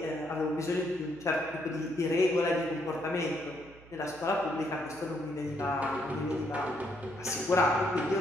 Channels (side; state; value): right; noise; hum, 22 dB below the sound